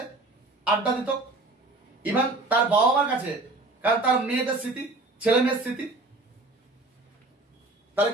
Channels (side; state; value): left; quieter; 3.1 dB